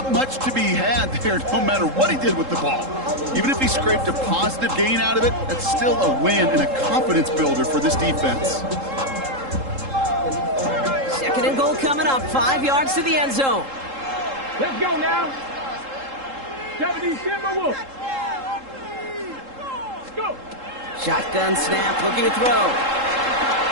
much to be had there, no matter what he did with the ball. Even if he scraped a positive gain out of it, that's still a win and a confidence builder for this defense. Second and goal coming up, 5 yards to the end zone. Let's go now. 70 Timberwolves. Go. Shotgun snap, looking to throw.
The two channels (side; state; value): left; late; 3.7 ms